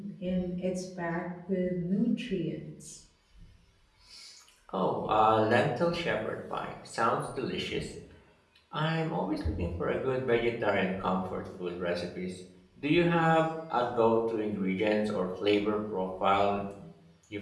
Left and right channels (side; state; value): both; identical; correlation 1.00